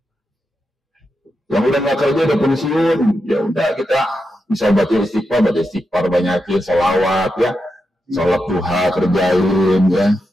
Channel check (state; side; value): normal; both; correlation 0.87